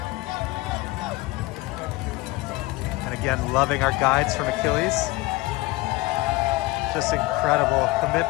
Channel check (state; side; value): quieter; right; 20.9 dB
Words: And again, loving our guides from Achilles. Just incredible